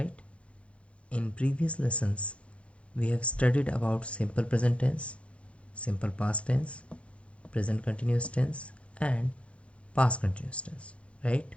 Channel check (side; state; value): right; late; 0.061 ms